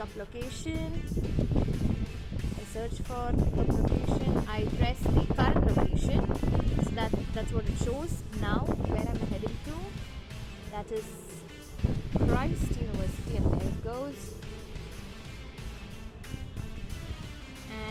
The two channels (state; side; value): identical; both; correlation 1.00